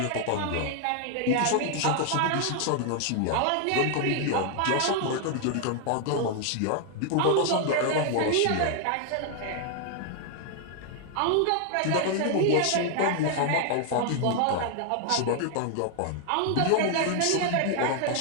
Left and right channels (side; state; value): both; different; correlation 0.00